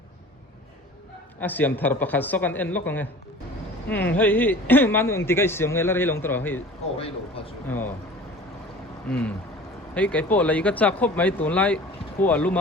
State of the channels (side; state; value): both; normal; correlation 0.42